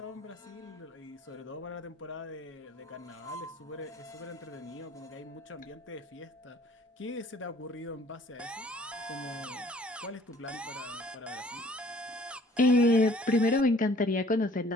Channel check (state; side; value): normal; both; correlation 0.55